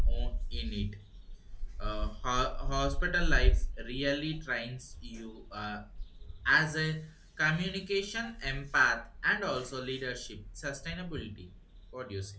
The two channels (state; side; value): identical; both; correlation 1.00